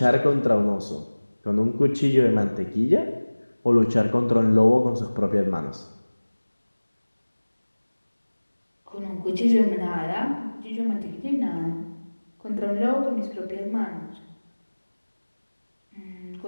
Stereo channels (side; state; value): both; inverted; correlation -1.00